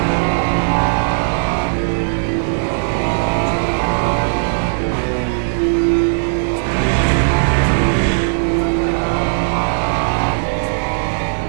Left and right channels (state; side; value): silent; left; 66 dB below the other